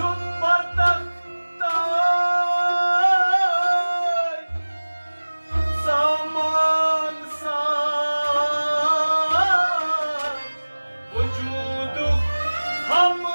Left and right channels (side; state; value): both; inverted; correlation -1.00